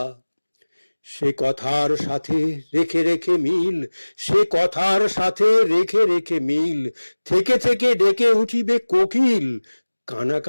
সে কথার সাথে রেখে রেখে মিল, সে কথার সাথে রেখে রেখে মিল। থেকে থেকে ডেকে উঠিবে কোকিল,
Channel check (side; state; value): both; inverted; correlation -1.00